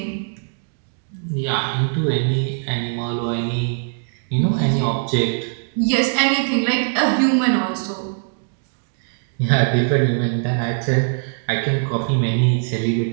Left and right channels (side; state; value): left; silent; digital silence